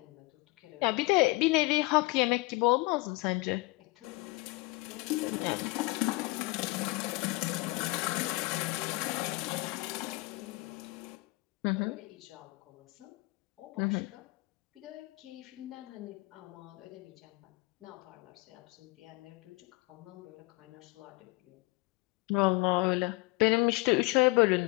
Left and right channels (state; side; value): quieter; right; 23.1 dB